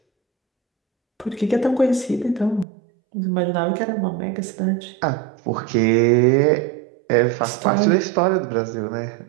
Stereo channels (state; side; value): drops out; left; at 2.7 s